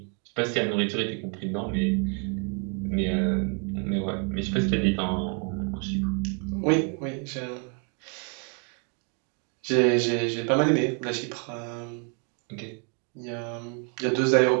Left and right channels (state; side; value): quieter; left; 35.2 dB